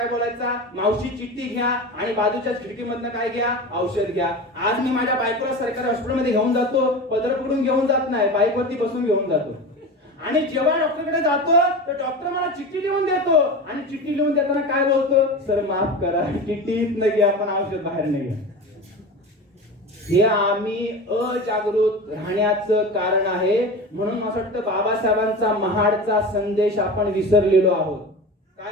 बोलायचा, मावशी चिठ्ठी घ्या आणि बाजूच्या खिडकीमधनं काय घ्या, औषध घ्या. आज मी माझ्या बायकोला सरकारी हॉस्पिटलमध्ये घेऊन जातो, पत्र पकडून घेऊन जात नाही, बाईकवरती बसून घेऊन जातो. आणि जेव्हा डॉक्टरकडे जातो तर डॉक्टर मला चिठ्ठी लिहून देतो आणि चिठ्ठी लिहून देताना काय बोलतो, सर माफ करा, चिठ्ठीत नाही घ्या, पण औषध बाहेर नाही घ्या. हे आम्ही अजागृत राहण्याचं कारण आहे. म्हणून असं वाटतं बाबासाहेबांचा महाडचा संदेश आपण विसरलेलो आहोत.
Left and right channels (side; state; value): both; normal; correlation 0.29